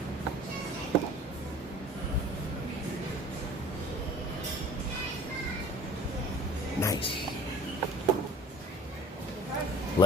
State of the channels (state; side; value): normal; both; correlation 0.45